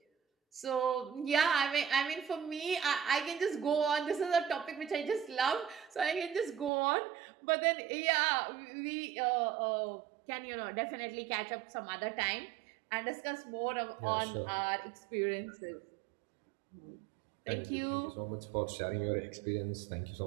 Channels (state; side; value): drops out; left; at 6.7 s